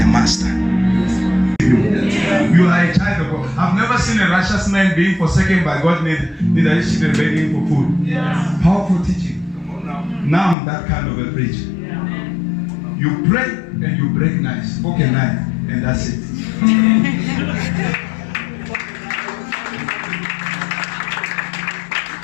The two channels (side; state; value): right; drops out; at 10.6 s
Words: master. You are a child of God. I've never seen a righteous man being forsaken by God, neither his children begging for food. Powerful teaching. Now I'm that kind of a preacher. You pray and you break knives, fork and knife, and that's it.